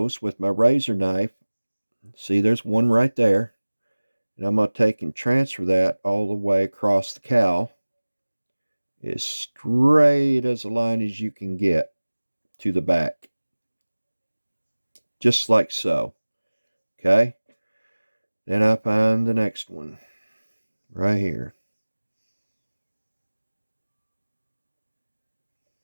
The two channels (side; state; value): both; inverted; correlation -1.00